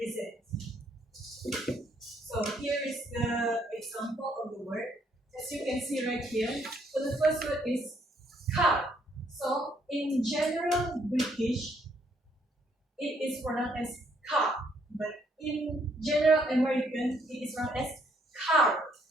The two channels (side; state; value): both; normal; correlation 0.69